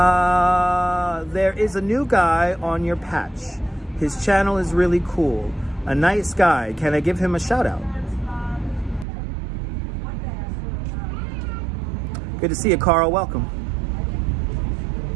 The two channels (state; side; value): drops out; left; at 9.1 s